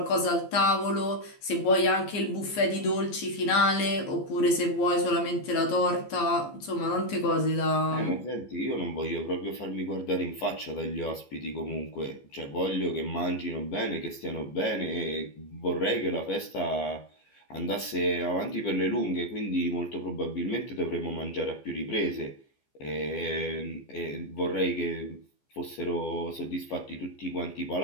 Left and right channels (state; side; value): late; right; 15 ms